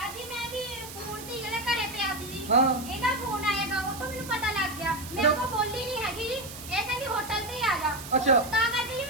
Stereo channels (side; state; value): right; noise; hiss, 12 dB below the sound